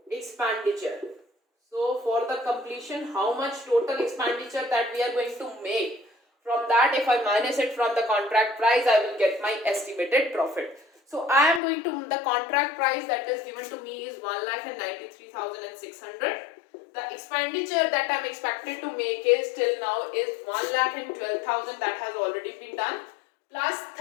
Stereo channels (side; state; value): right; drops out; at 11.6 s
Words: expenditure. So for the completion, how much total expenditure that we are going to make, from that if I minus it from the contract price, I will get my estimated profit. So I am going to, the contract price that is given to me is 1,93,600. The expenditure that I am expected to make is till now is 1,12,000, that has already been done, plus